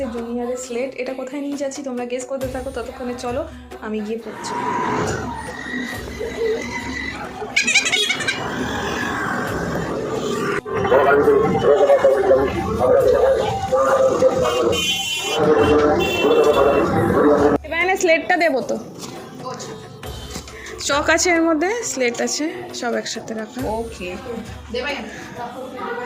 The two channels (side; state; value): both; identical; correlation 1.00